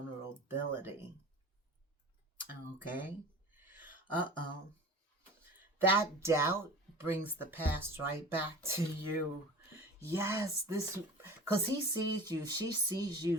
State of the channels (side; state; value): both; normal; correlation 0.38